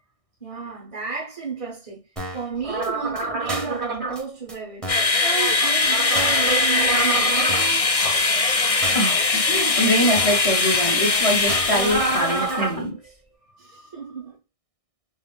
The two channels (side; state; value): right; late; 1.6 ms